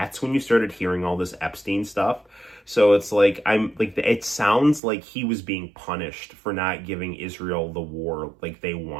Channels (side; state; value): left; drops out; at 4.8 s